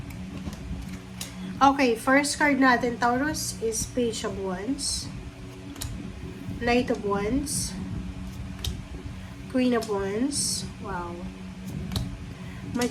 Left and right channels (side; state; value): both; identical; correlation 1.00